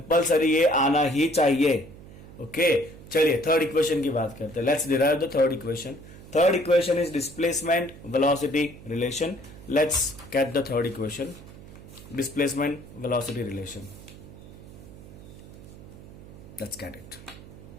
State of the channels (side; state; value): right; noise; hum, 17 dB below the sound